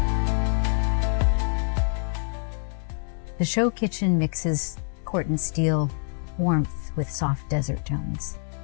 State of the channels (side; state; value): right; silent; digital silence